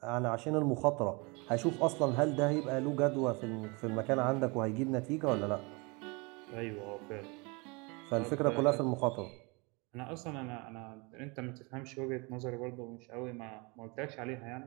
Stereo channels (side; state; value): left; quieter; 28.7 dB